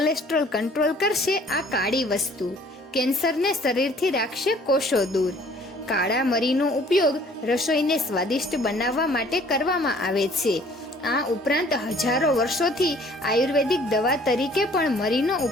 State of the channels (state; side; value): normal; both; correlation 0.55